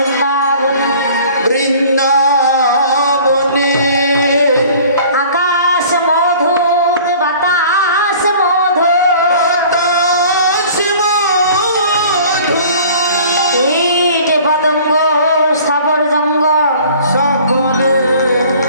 বৃন্দাবনে आकाश मधुर बतास मधुर বাতাস মধুর কীট পতঙ্গ স্থাবর জঙ্গ সকলে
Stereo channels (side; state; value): both; inverted; correlation -0.48